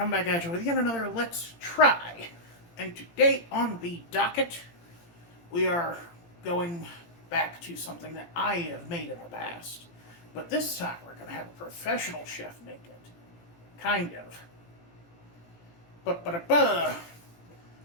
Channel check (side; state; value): right; late; 17 ms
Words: back at you with yet another Let's Try. And today on the docket, we are going back to something that I have made in the past. But this time, we're going to have a professional chef make it. Kind of. But